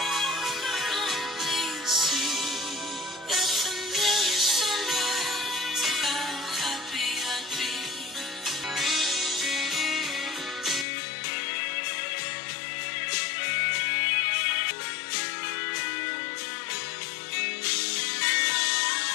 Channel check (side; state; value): right; drops out; at 10.9 s